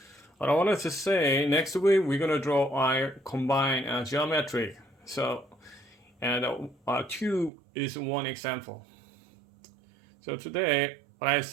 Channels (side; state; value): left; drops out; at 7.5 s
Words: What I wanted to say, next week we're gonna draw our combined geometric. So and 2 is one example. So today what I